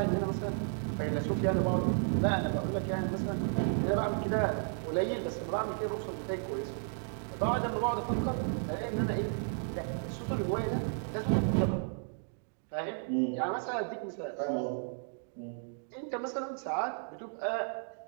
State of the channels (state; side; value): silent; left; 55 dB below the other